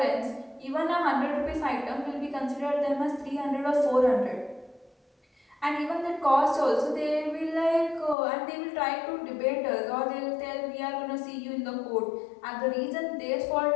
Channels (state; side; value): drops out; right; at 8.2 s